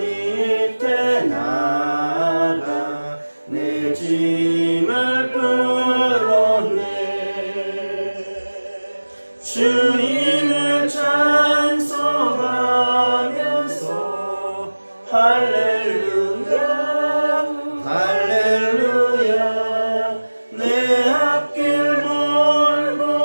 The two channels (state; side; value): inverted; both; correlation -1.00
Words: 나가 내 짐을 풀었네. 주님을 찬송하면서 할렐루야 할렐루야. 내 앞길 멀고